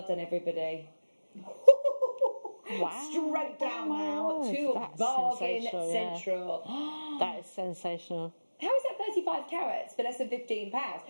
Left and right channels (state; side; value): inverted; both; correlation -1.00